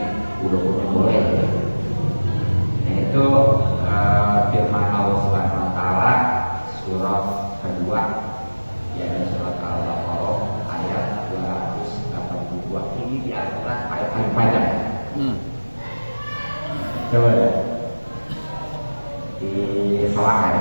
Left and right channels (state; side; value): inverted; both; correlation -1.00